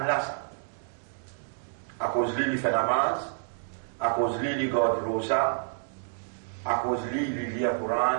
là à cause de lui il fait namaz, à cause de lui il garde rosa, à cause de lui il lit le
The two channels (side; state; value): left; silent; digital silence